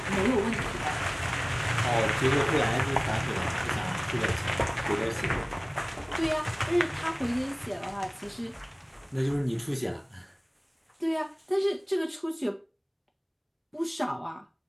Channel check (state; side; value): identical; both; correlation 1.00